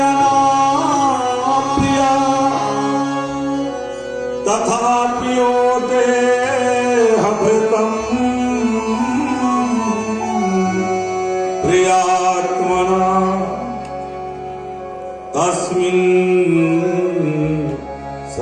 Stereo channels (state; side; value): identical; both; correlation 1.00